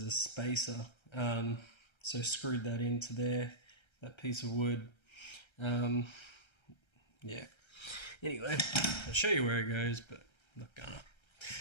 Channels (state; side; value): late; right; 1.3 ms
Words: a spacer. So screwed that into there, that piece of wood. Yeah. Anyway, I'll show you where it goes, but I'm not gonna.